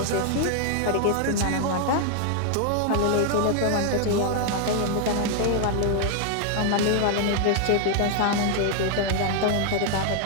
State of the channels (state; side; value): different; both; correlation 0.00